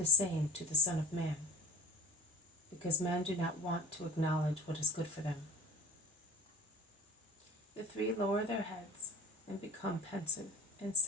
same to the Son of Man, because men do not want to acknowledge what is good for them. The three lower their heads and become pensive and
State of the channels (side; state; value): both; normal; correlation 0.35